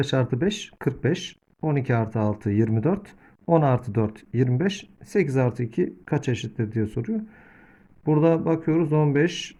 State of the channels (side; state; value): both; identical; correlation 1.00